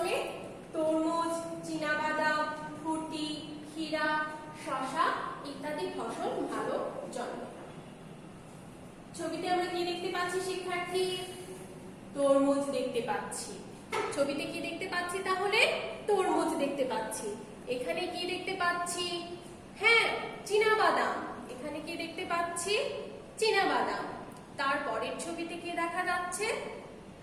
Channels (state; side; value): identical; both; correlation 1.00